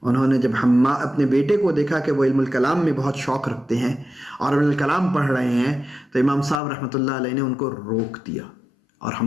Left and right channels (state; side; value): drops out; right; at 6.6 s